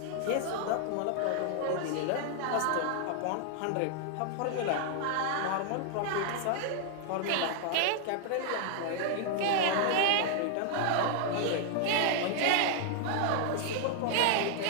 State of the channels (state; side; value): different; both; correlation 0.00